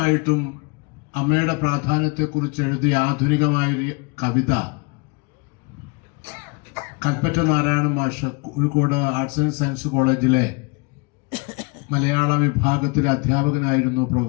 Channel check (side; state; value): right; quieter; 30.1 dB